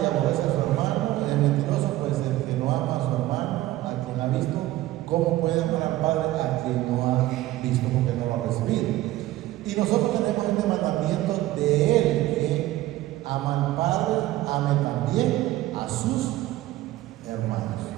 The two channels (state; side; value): quieter; left; 16.0 dB